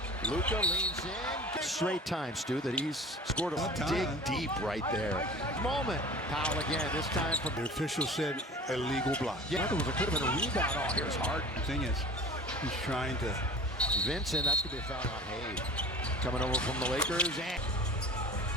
Luka leans in. Straight time, Stu, that he's scored a dig deep right there. Moment. Powell again, this time from... The official said illegal block. Yeah, there could have been a rebound. Oh, here's Harden. The thing is, he's trying to... Vincent, that's going to be a foul on Hayes. Coming over from the Lakers, and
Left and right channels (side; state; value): both; normal; correlation 0.40